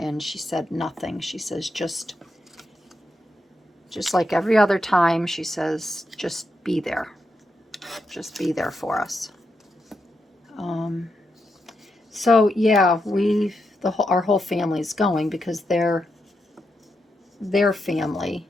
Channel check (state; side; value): normal; both; correlation 0.84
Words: she said nothing. She says, just like every other time, she says, just be there. Just be there for us. So yeah, our whole family's going, because their family